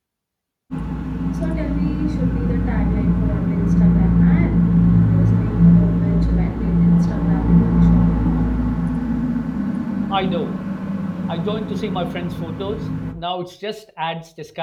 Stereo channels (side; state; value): both; identical; correlation 1.00